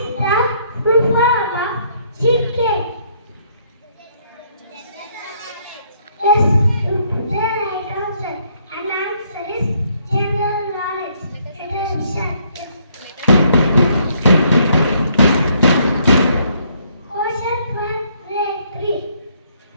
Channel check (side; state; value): both; inverted; correlation -0.68